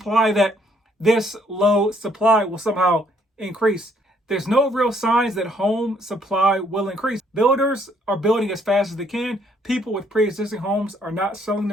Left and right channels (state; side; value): normal; both; correlation 0.67